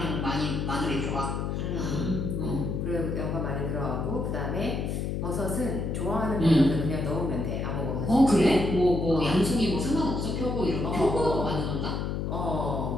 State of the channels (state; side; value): noise; left; hum, 1 dB below the sound